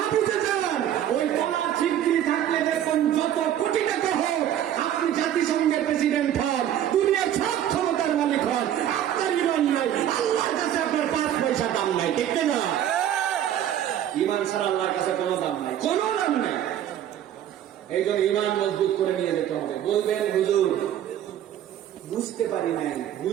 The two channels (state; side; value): quieter; left; 10.9 dB